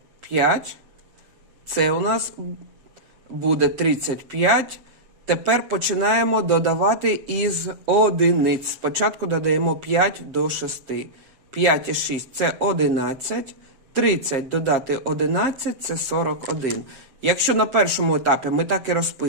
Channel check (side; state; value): left; late; 7.1 ms